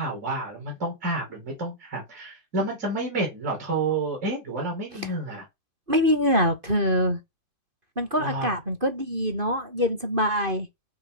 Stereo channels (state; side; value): late; left; 2.5 ms